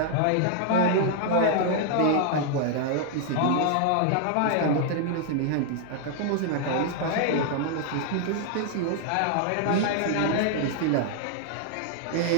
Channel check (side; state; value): both; different; correlation 0.00